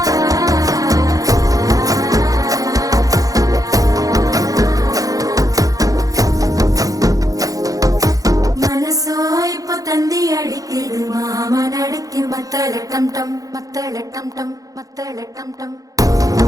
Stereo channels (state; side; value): late; left; 0.17 ms